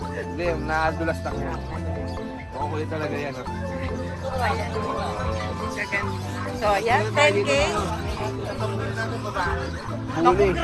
Hindi, nakadulas lang yan. Makukulit talaga yan. Oh. So, yan, 10K. Naku,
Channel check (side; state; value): both; identical; correlation 1.00